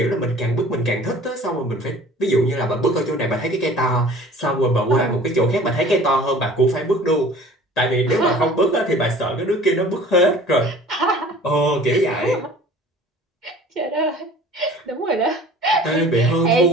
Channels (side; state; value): both; normal; correlation 0.47